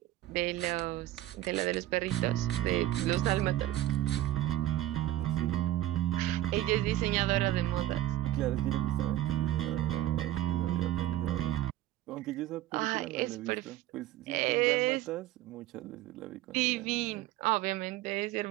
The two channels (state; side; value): quieter; left; 14.4 dB